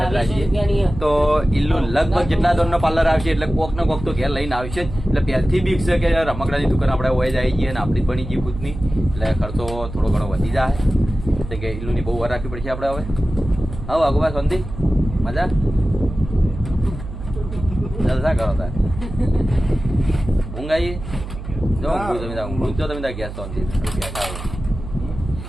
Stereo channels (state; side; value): noise; right; hum, 10 dB below the sound